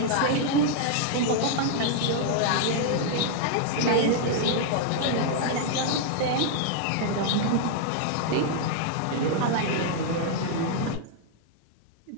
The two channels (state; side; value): different; both; correlation 0.00